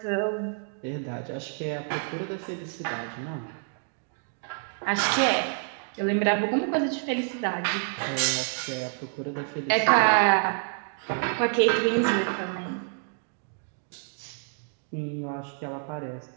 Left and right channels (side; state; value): left; silent; 59 dB below the other